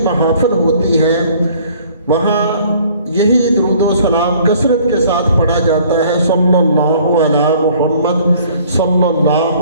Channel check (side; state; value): both; inverted; correlation -0.55